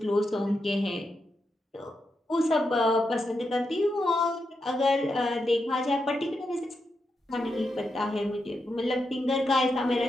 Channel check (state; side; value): normal; both; correlation 0.85